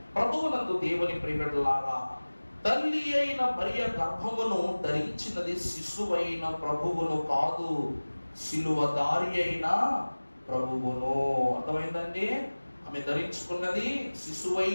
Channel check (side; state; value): both; inverted; correlation -1.00